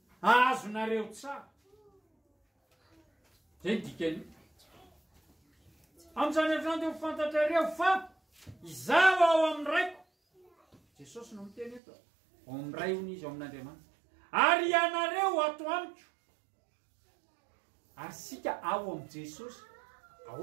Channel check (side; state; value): left; drops out; at 11.8 s